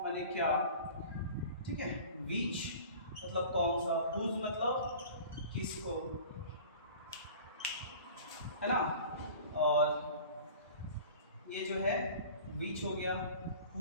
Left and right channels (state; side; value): inverted; both; correlation -0.41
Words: माने क्या, ठीक है, विच मतलब कौन सा, हुज मतलब किसको, है ना, और ये जो है विच हो गया,